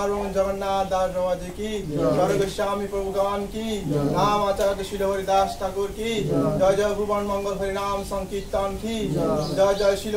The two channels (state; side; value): identical; both; correlation 1.00